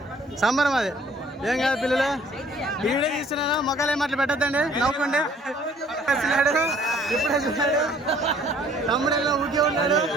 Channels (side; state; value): both; normal; correlation 0.58